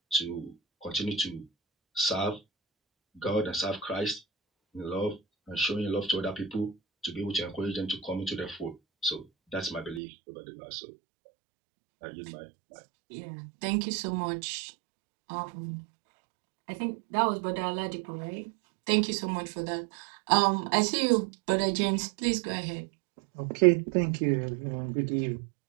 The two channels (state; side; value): drops out; left; at 10.0 s